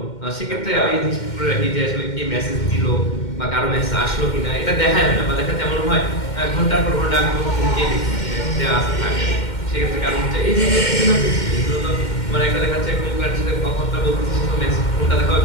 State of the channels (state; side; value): late; right; 2.1 ms